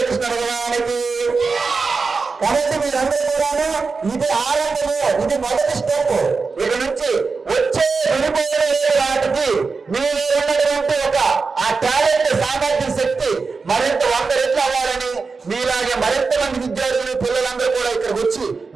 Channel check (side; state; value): left; quieter; 4.6 dB